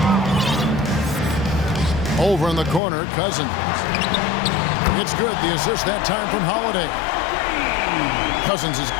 Over in the corner, Cousins. It's good. The assist that time from Holiday. Cousins has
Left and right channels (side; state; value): right; drops out; at 2.8 s